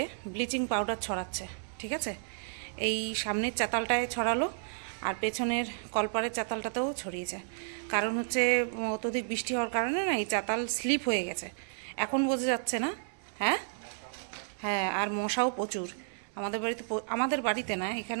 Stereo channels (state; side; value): silent; left; 56 dB below the other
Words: ব্লিচিং পাউডার ছড়াচ্ছে। ঠিক আছে, এই সামনের চাতালটায় ছড়ালো আর পেছনের কলপারের চাতালটাতেও ছড়িয়েছে। কারণ হচ্ছে অত্যধিক বৃষ্টি হওয়ার কারণে না এই চাতাল স্লিপ হয়ে গেছে, এখন বোঝা যাচ্ছে না। হ্যাঁ হ্যাঁ, আর মশাও প্রচুর আমাদের বাড়িতে না,